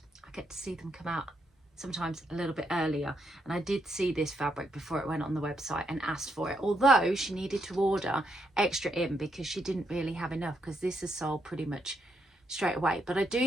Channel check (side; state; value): both; normal; correlation 0.78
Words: I get to see them come out sometimes a little bit earlier, and I did see this fabric before it went on the website and asked for it, although she needed to order extra in because she didn't really have enough, because this is sold pretty much straight away. But I